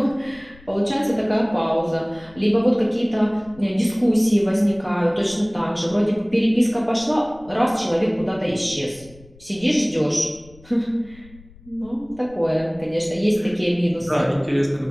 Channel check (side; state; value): left; noise; rumble, 24 dB below the sound